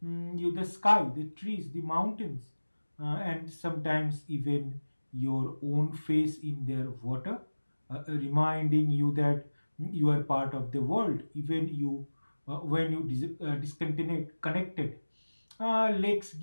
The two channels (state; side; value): inverted; both; correlation -1.00